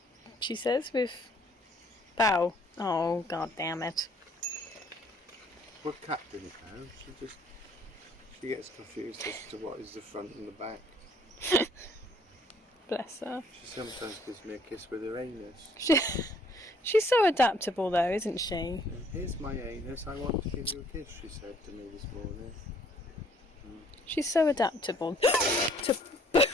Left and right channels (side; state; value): both; normal; correlation 0.61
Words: she says, with bow. Oh, god damn it. We're Captain Cow. She gets confused as to what is the front and the back. Bless her. She sometimes gives me a kiss with her anus. She's so adaptable though, isn't she? Here's my anus, I want to give you a kiss, she said to me this morning. She's so adaptable.